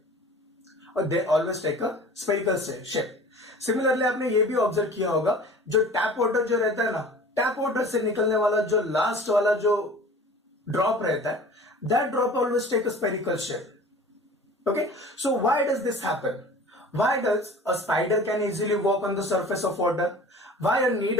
or they always take a spherical shape. Similarly, आपने ये भी observe किया होगा, जो tap water जो रहता है ना, टैप वाटर से निकलने वाला जो लास्ट वाला जो ड्रॉप रहता है, that drop always take a spherical shape. Okay, so why does this happen? Why does a spider can easily walk on the surface of water? Why a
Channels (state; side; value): normal; both; correlation 0.42